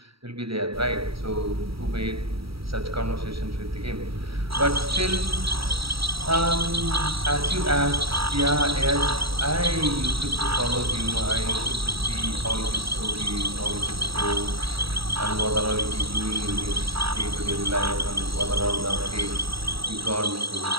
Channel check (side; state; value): left; late; 0.76 ms